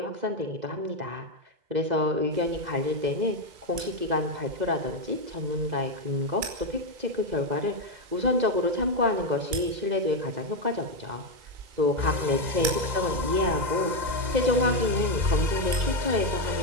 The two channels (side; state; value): left; late; 2.0 ms